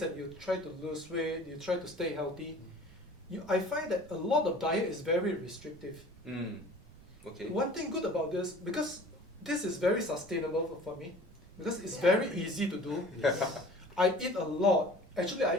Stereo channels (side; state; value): right; noise; rumble, 22 dB below the sound